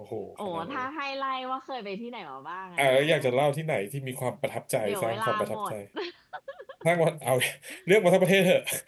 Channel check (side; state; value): both; identical; correlation 1.00